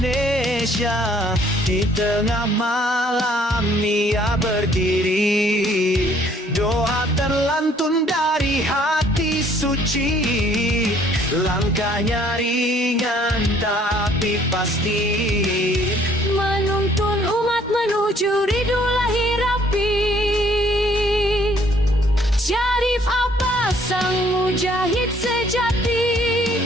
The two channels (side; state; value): both; normal; correlation 0.61